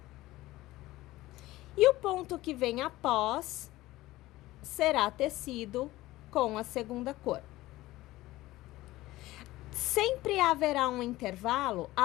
E o ponto que vem após será tecido com a segunda cor. Sempre haverá um intervalo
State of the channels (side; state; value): right; quieter; 17.4 dB